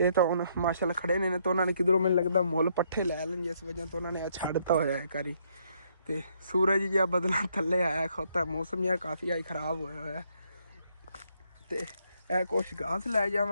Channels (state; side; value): inverted; both; correlation -0.71